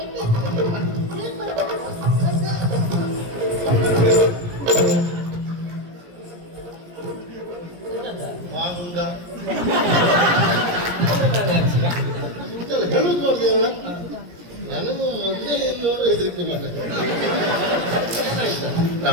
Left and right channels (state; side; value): late; left; 17 ms